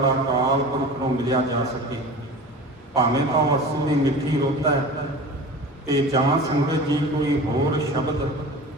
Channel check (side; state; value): both; normal; correlation 0.37